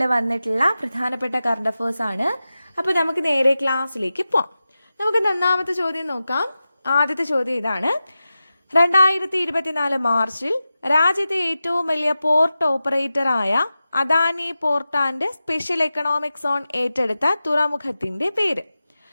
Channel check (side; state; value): both; inverted; correlation -0.94